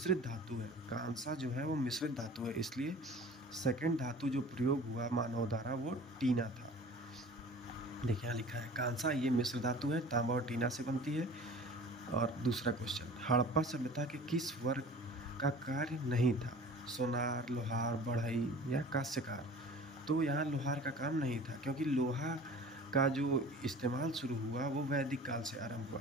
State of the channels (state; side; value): normal; both; correlation 0.43